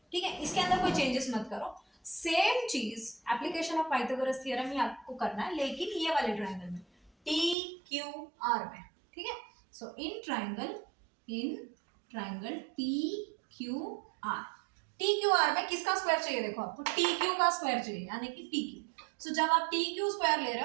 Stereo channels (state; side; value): drops out; left; at 7.6 s